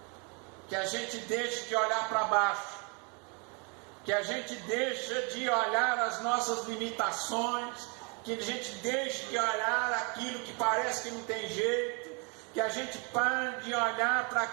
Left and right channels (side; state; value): left; quieter; 33.8 dB